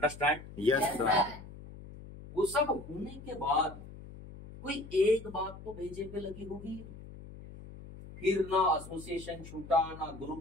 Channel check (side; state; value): left; noise; hum, 15 dB below the sound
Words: Yes sir. वो सब होने के बाद कोई एक बात तो भेजे पे लगी होगी। फिर ना एसोसिएशन छूटा, ना